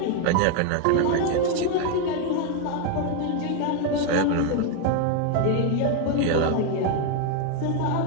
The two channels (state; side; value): different; both; correlation 0.01